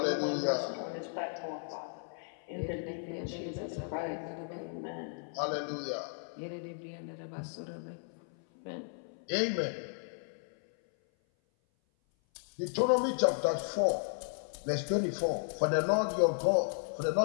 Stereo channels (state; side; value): silent; right; 55 dB below the other